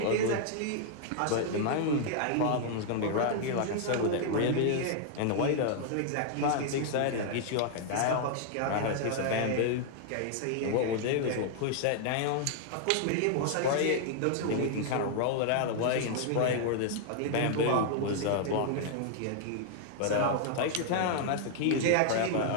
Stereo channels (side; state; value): both; different; correlation 0.00